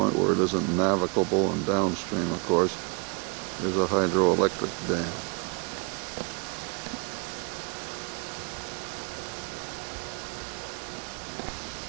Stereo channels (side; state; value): left; quieter; 32.5 dB